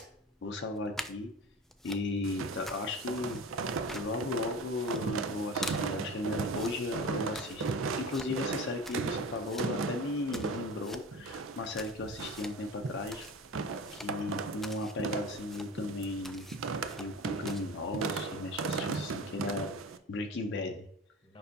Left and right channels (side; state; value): both; normal; correlation 0.34